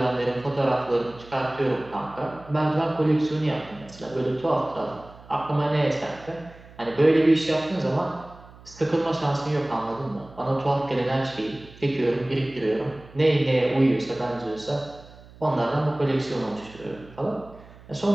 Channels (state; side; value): noise; right; hum, 21 dB below the sound